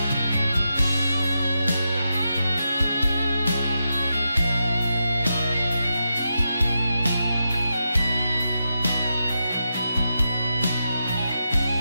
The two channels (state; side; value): inverted; both; correlation -0.87